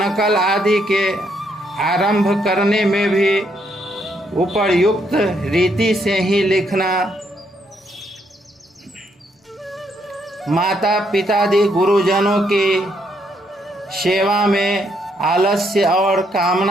आदि के आरंभ करने में भी उपर्युक्त रीति से ही लिखना, माता पितादि गुरुजनों की सेवा में आलस्य और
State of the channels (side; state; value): both; normal; correlation 0.74